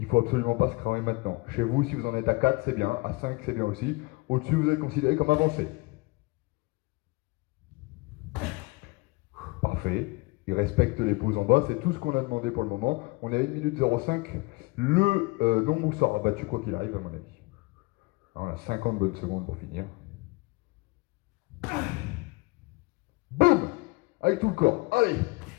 ne faut absolument pas se cramer maintenant. Chez vous, si vous en êtes à 4, c'est bien. À 5, c'est bien aussi. Au-dessus, vous êtes considéré comme avancé. Parfait. Il respecte les pauses en bas. C'est tout ce qu'on a demandé pour le moment. On est à 1 minute 05. Le nombre sera battu quoi qu'il arrive, à mon avis. On a 50 bonnes secondes pour finir. Boum! Avec tout le corps. Allez!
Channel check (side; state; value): right; quieter; 25.0 dB